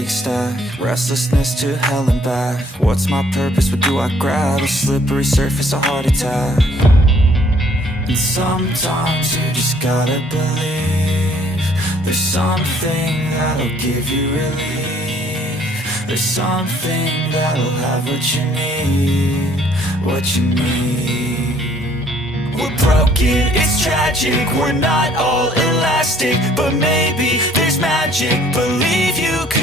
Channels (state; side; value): normal; both; correlation 0.61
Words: stack. Restlessness to hell and back. What's my purpose, what do I grab? A slippery surface, a heart attack. And sometimes you just gotta believe there's something that'll give you relief. There's something that'll have what you need, what you need. We're broken, it's tragic, we're not all elastic, but maybe there's magic, believe you